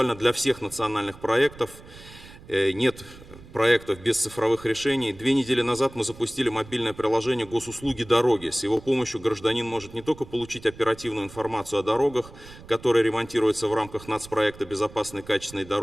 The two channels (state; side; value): noise; right; rumble, 19 dB below the sound